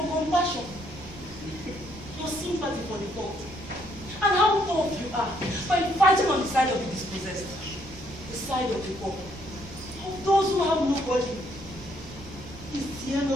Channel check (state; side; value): noise; right; rumble, 17 dB below the sound